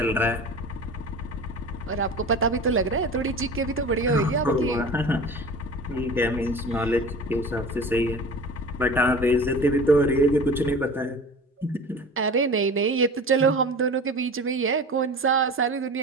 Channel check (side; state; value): both; normal; correlation 0.36